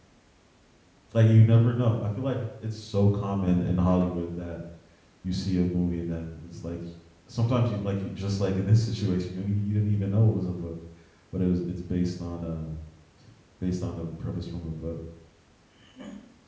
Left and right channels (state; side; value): identical; both; correlation 1.00